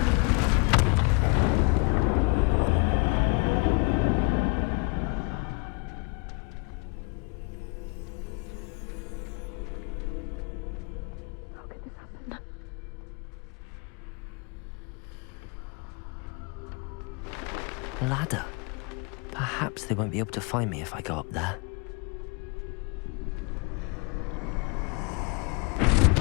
Ladder. Perhaps they won't be able to find me if I go up there.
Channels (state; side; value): quieter; right; 31.3 dB